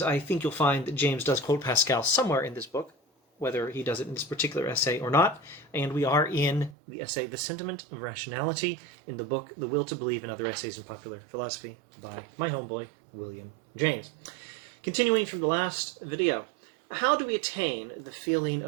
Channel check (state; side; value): drops out; left; at 6.8 s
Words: I think you'll find that James does quote Pascal somewhere in this book, whether he does it in this particular essay or not. And we are in the essay The Sentiment of Rationality in the book The Will to Believe and Other Essays in Popular Philosophy by my homeboy, William James. Continuing from the last video, how do we attain the feeling